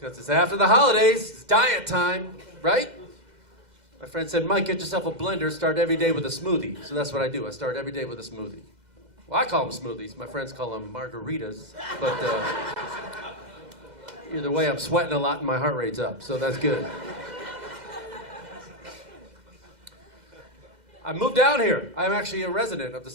it's after the holidays. It's diet time, right? My friend said, Mike, get yourself a blender. Start every day with a smoothie. So that's what I do. I start every day with a smoothie. Well, I call them smoothies. My friends call them margaritas. But either way, I'm sweating a lot and my heart rate's up. So that's good. I moved down here. I'm actually a resident of the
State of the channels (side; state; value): left; late; 2.0 ms